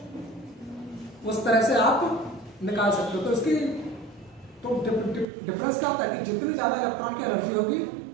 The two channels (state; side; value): drops out; left; at 5.2 s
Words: उस तरह से आप निकाल सकते हो। तो इसकी तो डिफरेंस क्या होता है कि जितनी ज़्यादा इलेक्ट्रॉन की एनर्जी होगी